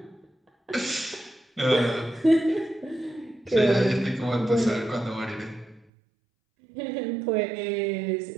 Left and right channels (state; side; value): drops out; left; at 5.9 s